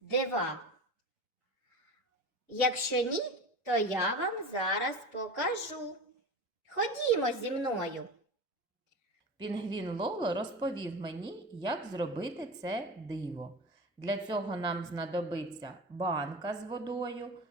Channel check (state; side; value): normal; both; correlation 0.29